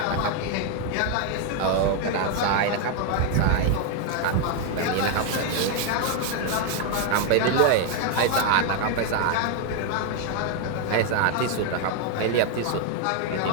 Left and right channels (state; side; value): different; both; correlation 0.01